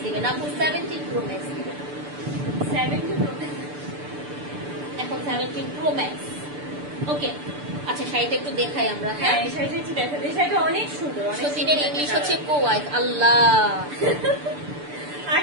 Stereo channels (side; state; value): left; late; 6.8 ms